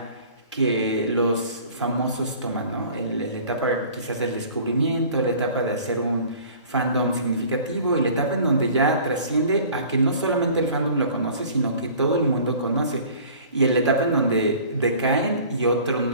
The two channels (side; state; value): both; inverted; correlation -0.47